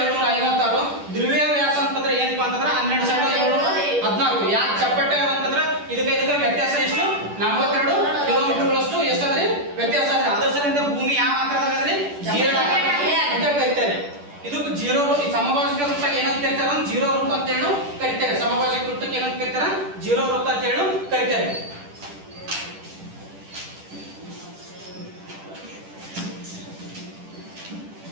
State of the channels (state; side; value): late; left; 10 ms